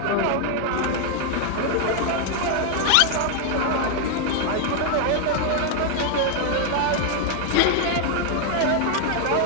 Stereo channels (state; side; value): different; both; correlation 0.00